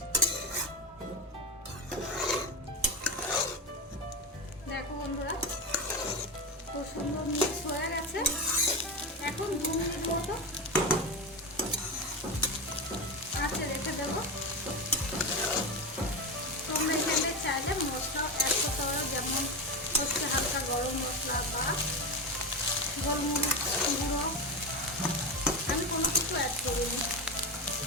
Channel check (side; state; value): both; normal; correlation 0.17